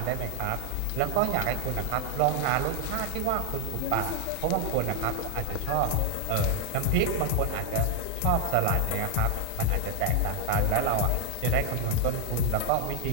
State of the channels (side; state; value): both; different; correlation 0.01